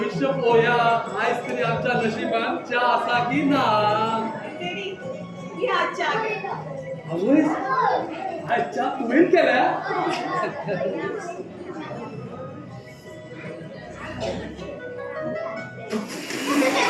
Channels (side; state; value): both; identical; correlation 1.00